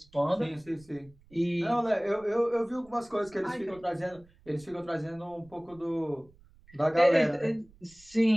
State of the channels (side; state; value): right; noise; rumble, 28 dB below the sound